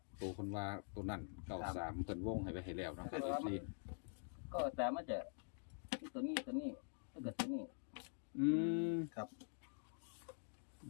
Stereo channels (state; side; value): silent; right; digital silence